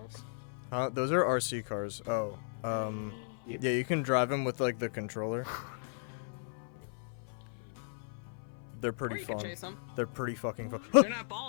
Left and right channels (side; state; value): right; silent; 54 dB below the other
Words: Those are RC cars. Oh, yeah, you can drive them with like the controller. They're Or pretty you can fun. chase them. They're pretty fucking fun. They're not